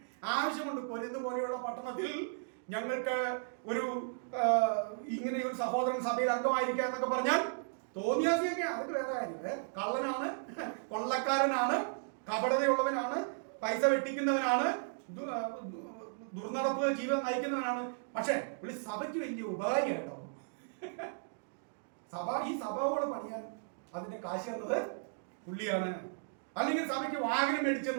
ആവശ്യമുണ്ട്. കൊരിന്ത് പോലെയുള്ള പട്ടണത്തിൽ ഞങ്ങൾക്ക് ഒരു ഇങ്ങനെ ഒരു സഹോദരൻ സഭയിൽ അംഗമായിരിക്കുക എന്നൊക്കെ പറഞ്ഞാൽ തോന്നിയാസിയൊക്കെ അതൊക്കെ വേറെ കാര്യം. കള്ളനാണ്, കൊള്ളക്കാരനാണ്, കപടതയുള്ളവനാണ്, പൈസ വെട്ടിക്കുന്നവനാണ്, ദുർനടപ്പ് ജീവിതം നയിക്കുന്നവനാണ്. പക്ഷെ പുള്ളി സഭയ്ക്ക് വലിയ ഉപകാരിയായിട്ടോ. ഈ സഭയോട് പണിയാൻ അതിന്റെ കാശ് തന്നത് പുള്ളിയാണ്. അല്ലെങ്കിൽ സഭയ്ക്ക് വാഹനം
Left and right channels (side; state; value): left; silent; digital silence